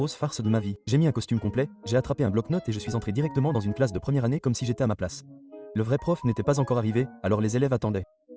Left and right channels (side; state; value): both; identical; correlation 1.00